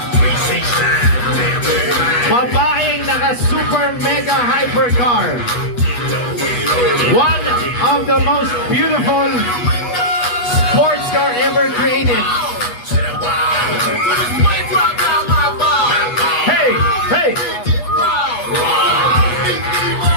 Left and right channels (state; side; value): late; right; 8.2 ms